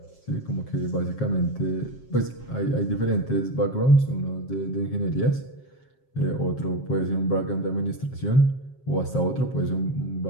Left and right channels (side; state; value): right; late; 7.5 ms